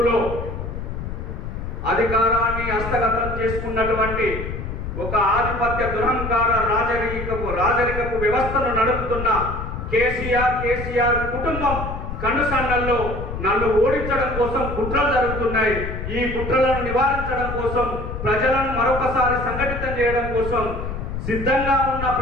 అధికారాన్ని హస్తగతం చేసుకున్నటువంటి ఒక ఆధిపత్య దురహంకార రాజరికపు వ్యవస్థను నడుపుతున్న కేసీఆర్ కుటుంబం కనుసన్నల్లో నన్ను ఓడించడం కోసం కుట్రలు జరుగుతున్నాయి. ఈ కుట్రలను నివారించడం కోసం, ప్రజలను మరొకసారి సంఘటితం చేయడం కోసం సిద్ధంగా ఉన్న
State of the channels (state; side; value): noise; left; rumble, 6 dB below the sound